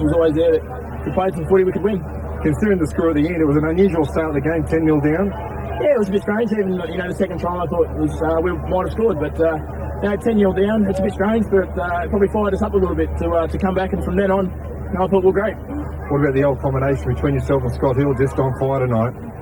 was always there that if we played some footy, we could win. Considering the score at the end, it was an unusual start of the game, 10-0 down. Yeah, it was a bit strange. Even the second try, I thought was we might have scored, but 10-0 down, it's a bit strange, but it probably fired us up a little bit to come back, and from then on, I thought we're great. What about the old combination between yourself and Scott Hill just on fire tonight?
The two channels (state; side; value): identical; both; correlation 1.00